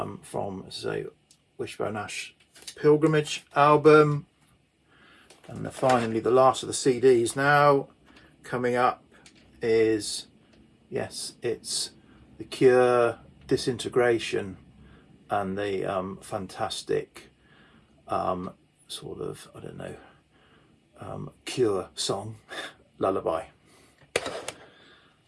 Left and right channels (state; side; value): identical; both; correlation 1.00